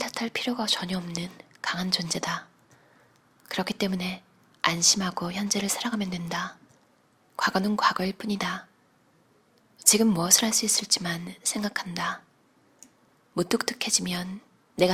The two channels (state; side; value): identical; both; correlation 1.00